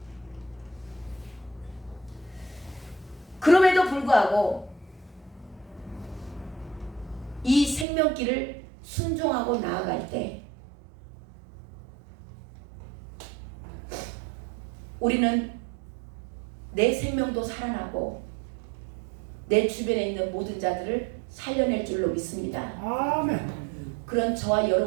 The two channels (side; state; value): left; drops out; at 7.9 s